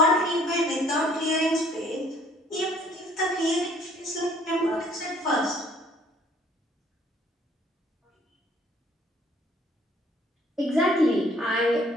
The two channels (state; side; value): normal; both; correlation 0.59